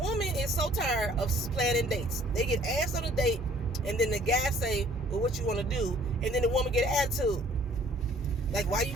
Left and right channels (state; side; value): normal; both; correlation 0.57